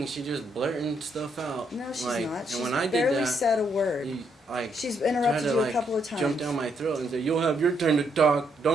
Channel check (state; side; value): normal; both; correlation 0.75